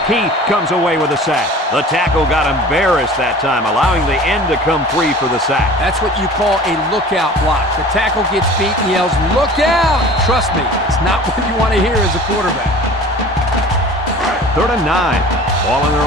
Keith comes away with a sack. The tackle got embarrassed that time, allowing the end to come free for the sack. That's what you call a lookout block. The tackle gets beat and yells, "Look out!" Trust me, it's not what you want to hear as a quarterback. 3rd and 9. Ball on their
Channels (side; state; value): both; normal; correlation 0.42